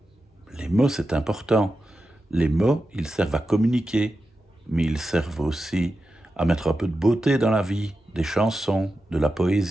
Les mots, c'est important. Les mots, ils servent à communiquer, mais ils servent aussi à mettre un peu de beauté dans la vie, des chansons, de la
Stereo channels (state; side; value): normal; both; correlation 0.91